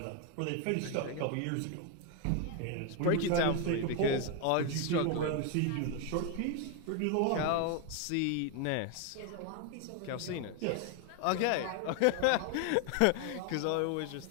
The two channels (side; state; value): both; different; correlation 0.01